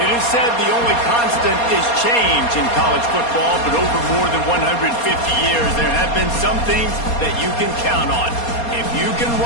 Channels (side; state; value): right; late; 4.2 ms